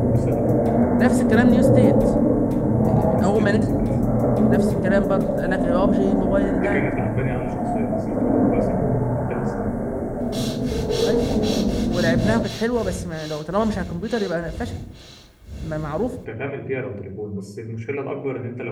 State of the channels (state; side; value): identical; both; correlation 1.00